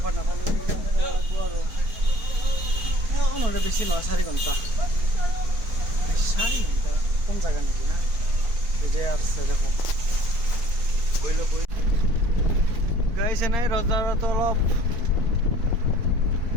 নাপালোঁ আৰু নহ'লে বেছি নহয় 4 ঘণ্টা। 4 ঘণ্টা কম জেগা নেকি? হা এতিয়া আছে দেখো গাইছে নাই ৰজাৰতো অলপ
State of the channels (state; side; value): late; left; 4.4 ms